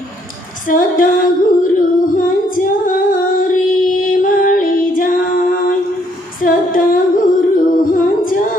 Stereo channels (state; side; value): normal; both; correlation 0.68